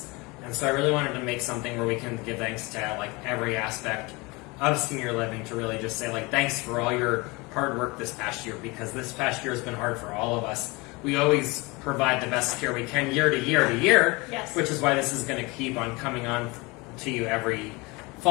And so I really wanted to make something where we can give thanks to like every aspect of senior living, to really just say like thanks for all your hard work this past year, because this past year has been hard for all of us. We always provide the best care we can year to year to year, yes. Which is why this is going to keep on coming on to you every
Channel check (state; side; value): quieter; right; 25.2 dB